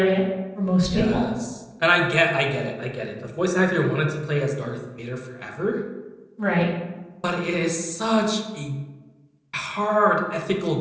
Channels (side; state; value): both; identical; correlation 1.00